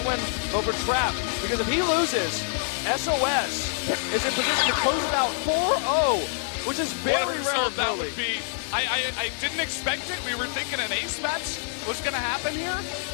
win over Trap. Because if he loses, SOS is in position to close it out 4-0, which is very rare. Result that would be. I didn't expect it. We were thinking an ace match was going to happen here.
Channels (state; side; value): silent; right; digital silence